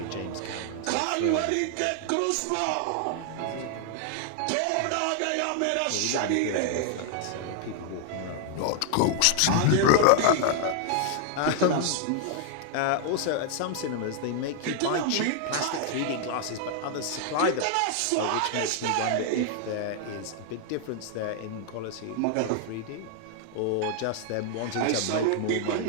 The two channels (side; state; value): both; different; correlation 0.00